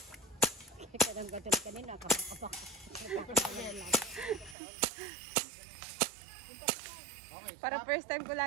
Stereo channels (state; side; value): drops out; left; at 4.5 s